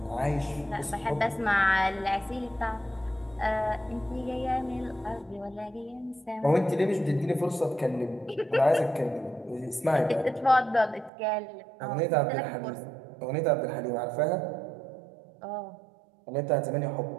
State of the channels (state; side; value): drops out; left; at 11.1 s